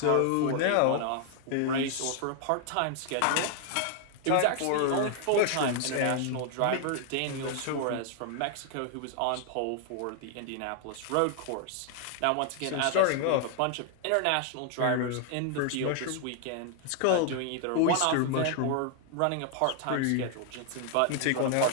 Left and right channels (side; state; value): both; different; correlation 0.00